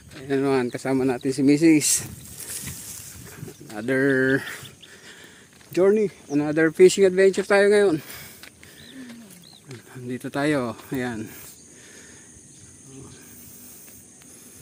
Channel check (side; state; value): both; identical; correlation 1.00